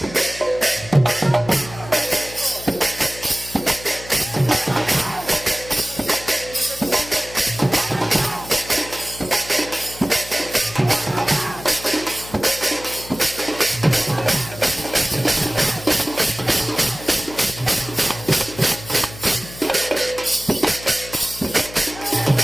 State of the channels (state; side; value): noise; left; hum, 16 dB below the sound